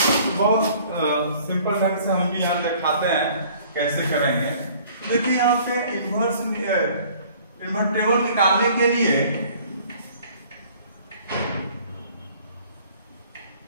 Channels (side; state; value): both; inverted; correlation -0.54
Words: बहुत सिंपल ढंग से हम भी यहाँ दिखाते हैं कैसे करेंगे। देखिए यहाँ पे इन्वर्टेबल निकालने के लिए